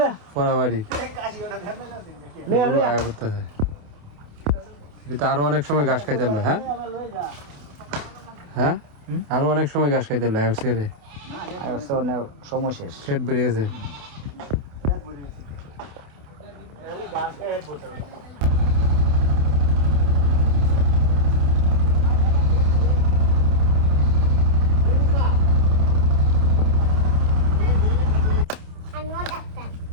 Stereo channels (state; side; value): late; left; 28 ms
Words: পড়াবাড়ি গরু আয়া করতেছে এটা আরো অনেক সময় ঘাস খাইতে হলো হ্যাঁ হ্যাঁ আরো অনেক সময় ঘাস খাইতে হলো রে সময় শেষ ফেট বেড়ে গেছে